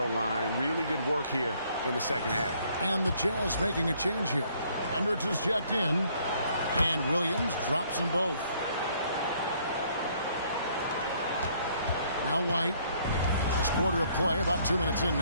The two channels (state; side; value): inverted; both; correlation -0.64